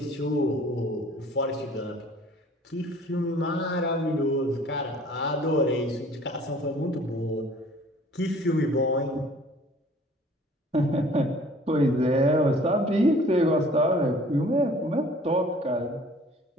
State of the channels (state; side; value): normal; both; correlation 0.52